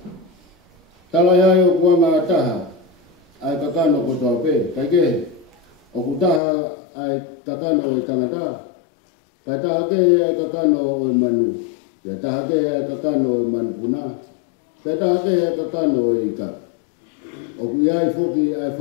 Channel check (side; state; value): right; drops out; at 6.4 s